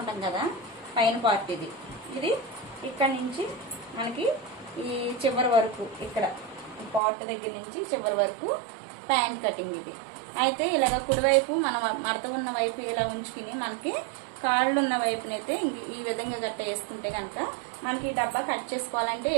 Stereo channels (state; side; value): drops out; left; at 7.0 s